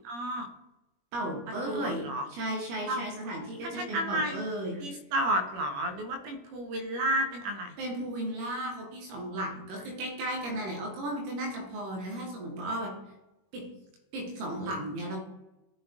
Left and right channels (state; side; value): late; left; 21 ms